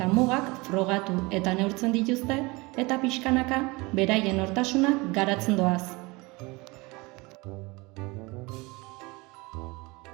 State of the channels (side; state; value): left; quieter; 24.6 dB